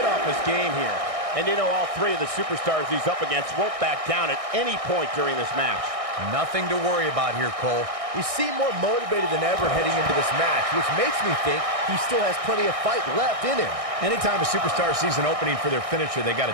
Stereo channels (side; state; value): left; late; 1.6 ms